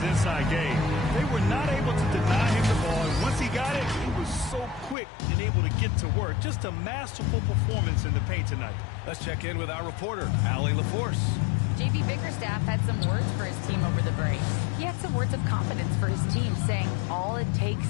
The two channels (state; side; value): drops out; right; at 5.0 s